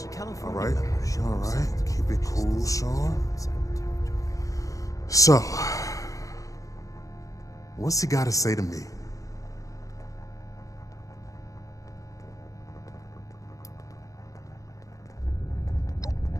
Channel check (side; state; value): right; late; 0.16 ms